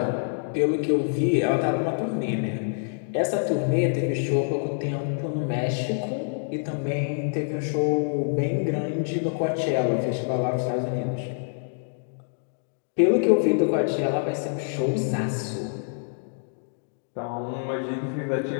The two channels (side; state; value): right; silent; digital silence